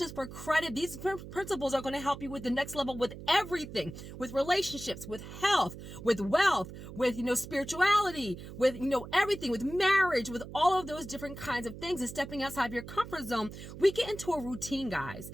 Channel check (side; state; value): right; noise; hum, 12 dB below the sound